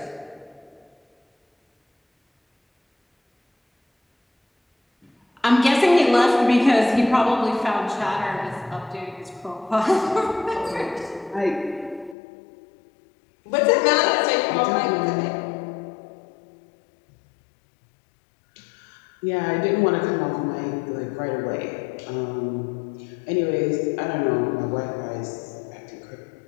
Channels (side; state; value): right; drops out; at 12.2 s